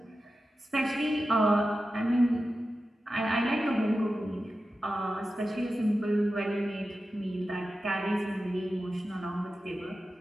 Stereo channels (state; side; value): normal; both; correlation 0.93